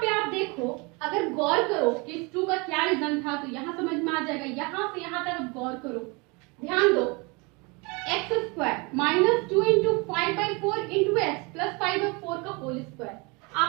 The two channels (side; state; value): left; quieter; 28.6 dB